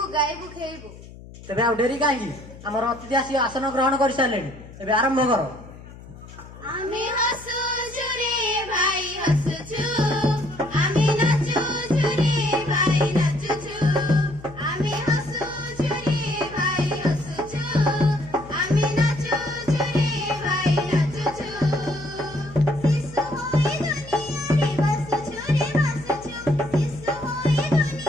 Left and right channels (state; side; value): noise; left; hum, 17 dB below the sound